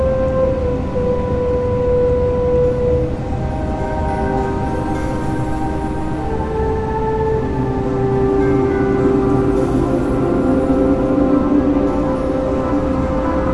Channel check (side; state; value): both; identical; correlation 1.00